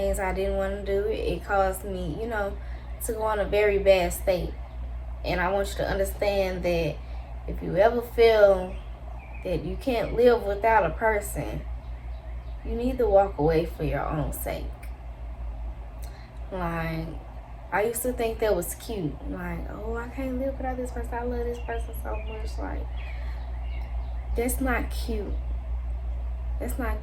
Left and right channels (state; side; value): identical; both; correlation 1.00